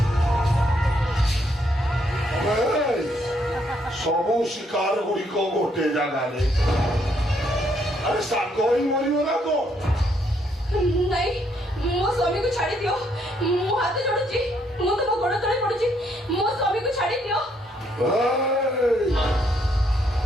ସବୁ ଶିକାର ଗୁଡ଼ିକ ଗୋଟେ ଜାଗାରେ ଆରେ ସାଙ୍ଗ ହିଁ ମରିବ ନା କଣ ନାଇଁ ମୋ ସ୍ୱାମୀକୁ ଛାଡି ଦିଅ ମୁଁ ହାତ ଯୋଡୁଛି ମୁଁ ତମ ଗୋଡ ତଳେ ପଡୁଛି ମୋ ସ୍ୱାମୀକୁ ଛାଡି ଦିଅ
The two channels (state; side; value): normal; both; correlation 0.72